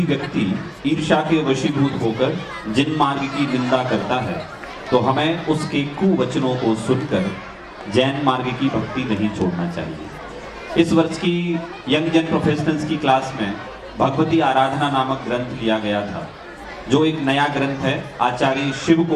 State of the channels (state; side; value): identical; both; correlation 1.00